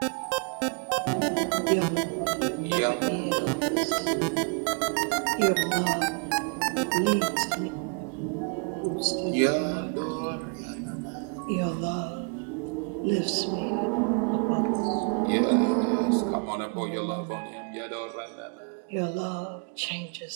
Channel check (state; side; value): quieter; left; 38.1 dB